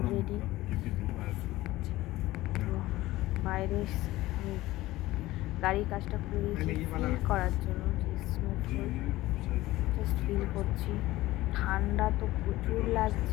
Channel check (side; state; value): right; quieter; 17.4 dB